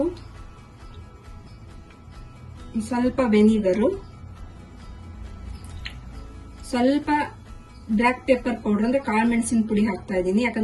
ಸ್ವಲ್ಪ ವೆನಿಗರು, ಸ್ವಲ್ಪ ಬ್ಲಾಕ್ ಪೆಪ್ಪರ್ ಪೌಡರ್ ಅಂದ್ರೆ ಕಾಳು ಮೆಣಸಿನ ಪುಡಿ ಹಾಕ್ತಾ ಇದ್ದೀನಿ.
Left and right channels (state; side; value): identical; both; correlation 1.00